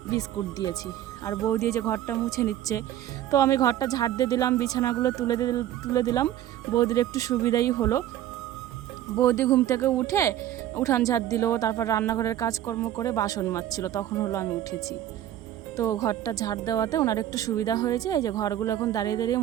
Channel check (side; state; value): left; quieter; 12.2 dB